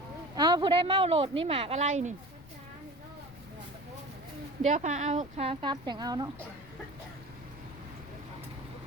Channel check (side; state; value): left; noise; rumble, 20 dB below the sound